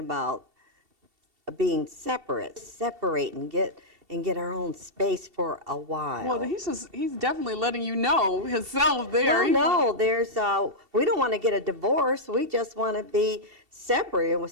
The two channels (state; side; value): late; left; 2.7 ms